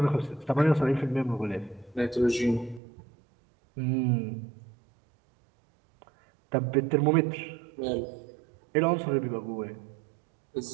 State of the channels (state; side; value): drops out; left; at 2.8 s